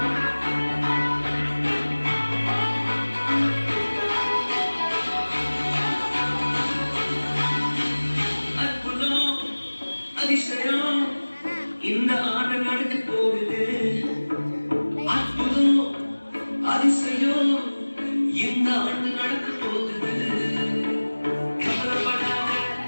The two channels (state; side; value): inverted; both; correlation -1.00